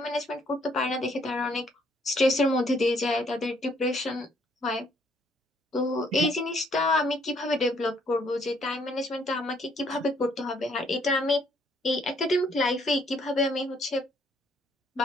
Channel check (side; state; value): both; normal; correlation 0.67